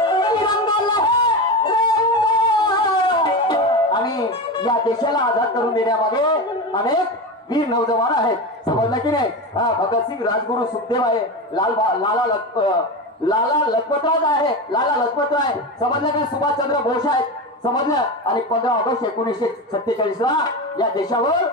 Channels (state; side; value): normal; both; correlation 0.21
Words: तिरंगा लहरेंगे। आणि या देशाला आझाद करून देण्यामागे अनेक वीर नौजवान आहेत, समजलं की नाही? भगतसिंग, राजगुरु, सुखदेव आहे, लाला लजपतराय आहे, लाला लजपतराय, समजलं की सुभाषचंद्र बोस आहेत, समजलं? आणि 15 ऑगस्ट 1946 ला या